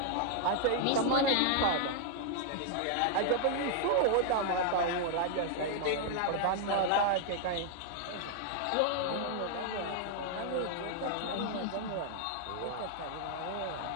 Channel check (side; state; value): both; different; correlation 0.00